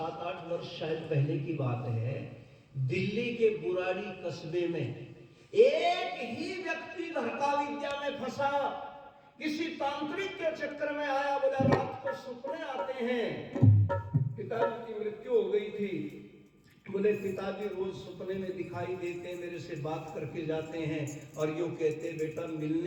वर्ष शायद पहले की बात है, दिल्ली के बुराड़ी कस्बे में एक ही व्यक्ति घर का विद्या में फंसा, किसी तांत्रिक के चक्कर में आया, बोला रात को सपने आते हैं, पिताजी की मृत्यु हो गई थी, बोले पिताजी रोज सपने में दिखाई देते हैं, मेरे से बात करके जाते हैं और यूं कहते हैं बेटा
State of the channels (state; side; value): identical; both; correlation 1.00